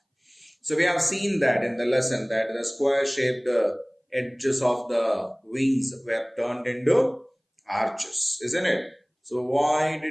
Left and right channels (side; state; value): both; identical; correlation 1.00